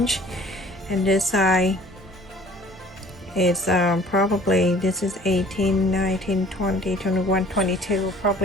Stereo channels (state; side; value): normal; both; correlation 0.52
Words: and this side it's probably, this is 18, 19, 20, 21, 22,